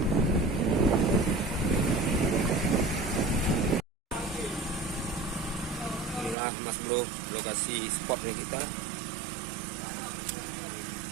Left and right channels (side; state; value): left; drops out; at 6.4 s